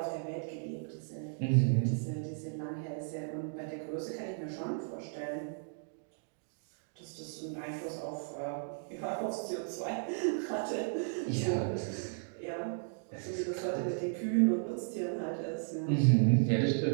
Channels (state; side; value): silent; left; digital silence